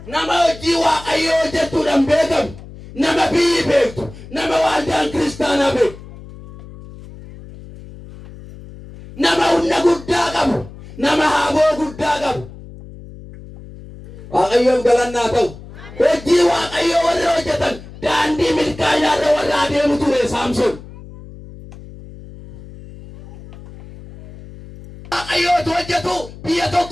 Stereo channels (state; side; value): noise; left; hum, 17 dB below the sound